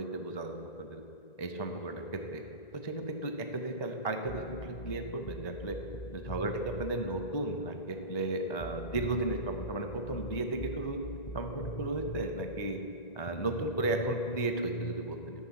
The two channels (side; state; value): right; late; 1.9 ms